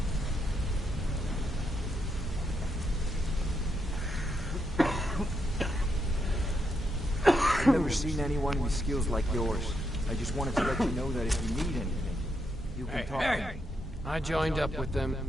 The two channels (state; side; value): normal; both; correlation 0.80